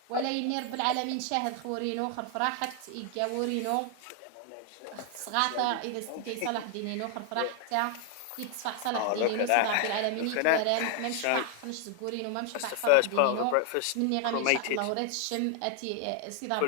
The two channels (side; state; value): both; different; correlation 0.00